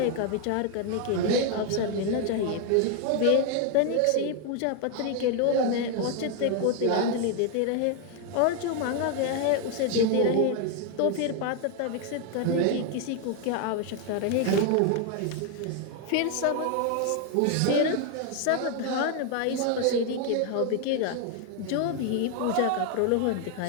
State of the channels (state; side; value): different; both; correlation 0.00